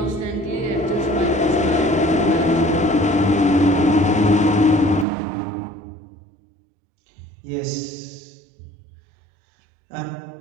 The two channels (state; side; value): drops out; left; at 5.1 s